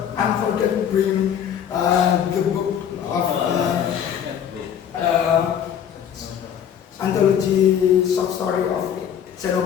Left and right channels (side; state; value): right; quieter; 8.9 dB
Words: I'm forgetting to bring the book of anthology short story of Seno